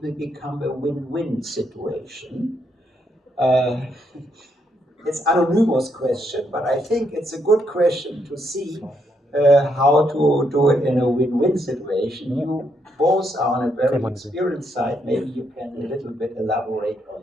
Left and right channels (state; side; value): normal; both; correlation 0.76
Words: will become a win-win situation? It's an anonymous question, but I think it's a good question to see how to do it in a win-win situation. You both are on a very experienced side. Maybe you can a little bit elaborate